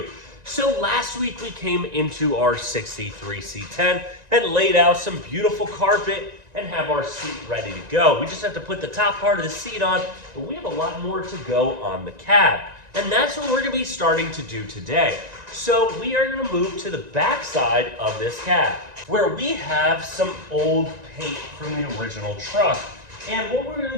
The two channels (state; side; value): late; left; 1.9 ms